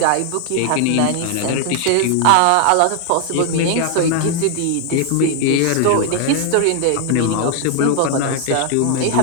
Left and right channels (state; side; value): different; both; correlation 0.00